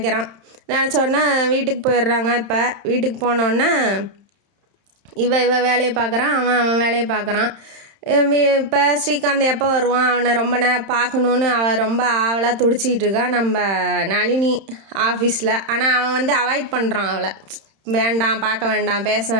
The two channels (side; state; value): left; late; 31 ms